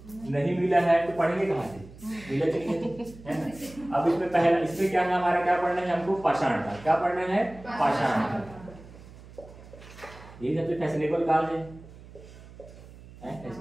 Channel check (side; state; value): right; noise; hum, 19 dB below the sound